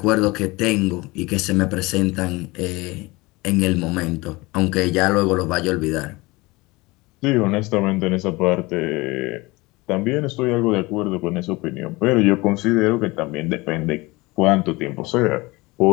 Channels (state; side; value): quieter; right; 22.7 dB